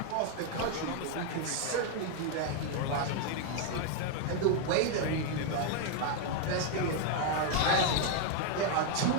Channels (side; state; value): both; different; correlation 0.01